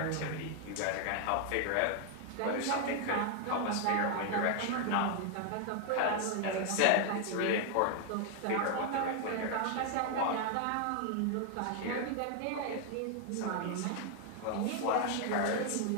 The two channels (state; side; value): different; both; correlation 0.00